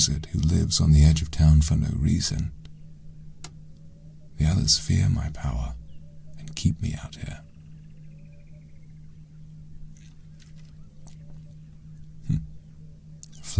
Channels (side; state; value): both; identical; correlation 1.00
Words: who lives on the edge of town for no reason. The others fear my power and keep me out here.